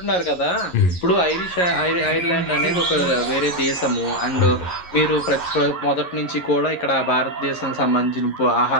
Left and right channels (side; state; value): right; late; 11 ms